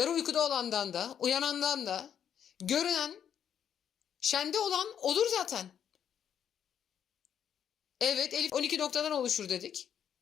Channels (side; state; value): right; quieter; 8.9 dB